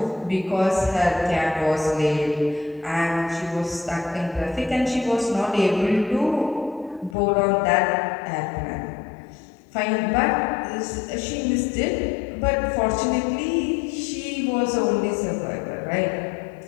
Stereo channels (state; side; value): drops out; right; at 7.2 s